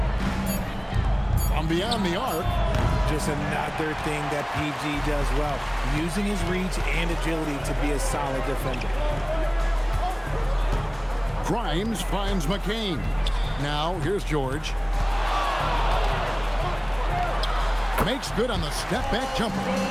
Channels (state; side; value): identical; both; correlation 1.00